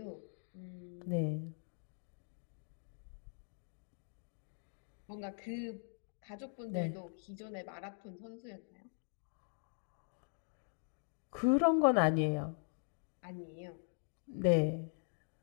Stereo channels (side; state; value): right; silent; digital silence